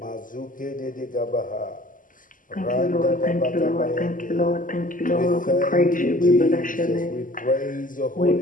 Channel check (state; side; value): late; right; 0.39 ms